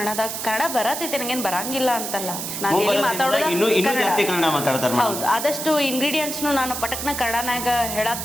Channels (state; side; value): noise; right; hiss, 5 dB below the sound